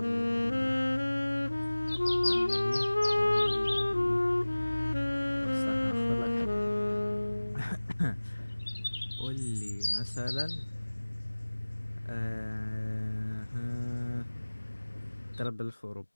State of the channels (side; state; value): both; inverted; correlation -1.00